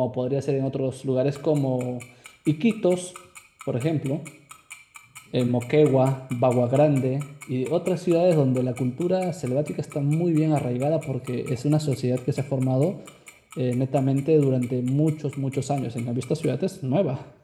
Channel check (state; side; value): identical; both; correlation 1.00